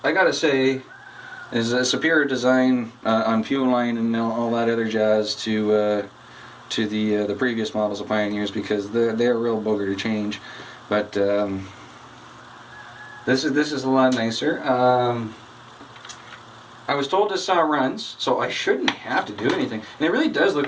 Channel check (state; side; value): identical; both; correlation 1.00